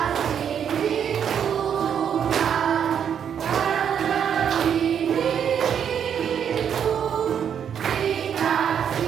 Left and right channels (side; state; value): left; quieter; 8.3 dB